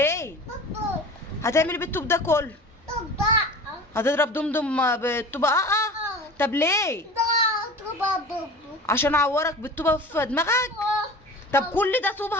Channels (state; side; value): normal; both; correlation 0.37